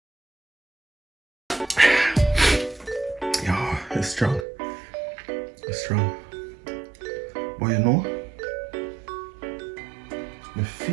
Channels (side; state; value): left; drops out; at 4.5 s